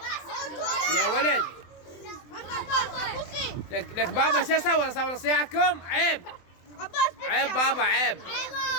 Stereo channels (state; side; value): late; right; 24 ms